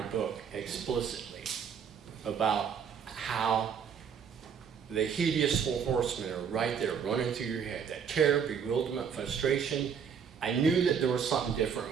book explicitly, about how the hideous four horsemen are right there running through your head, that terror, bewilderment, frustration. I knew that there was something different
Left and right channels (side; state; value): left; quieter; 7.2 dB